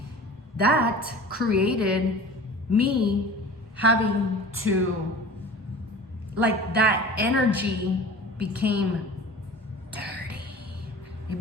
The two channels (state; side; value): normal; both; correlation 0.39